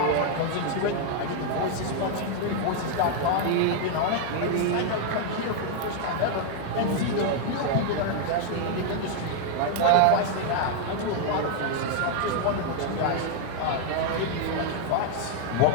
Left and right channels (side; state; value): both; different; correlation 0.00